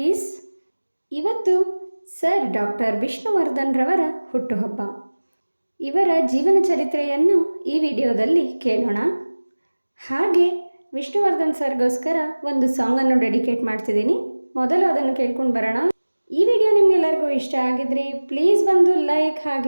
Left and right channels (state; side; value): inverted; both; correlation -1.00